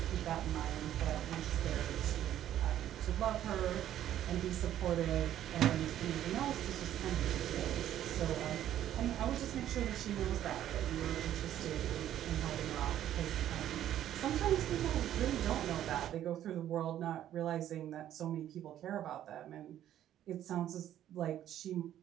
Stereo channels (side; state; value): left; quieter; 11.7 dB